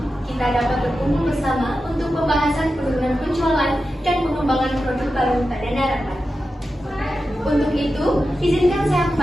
kita dapat berkumpul bersama untuk pembahasan penurunan penjualan dan pengembangan produk baru pada Narapat. Untuk itu, izinkan saya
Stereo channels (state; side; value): normal; both; correlation 0.91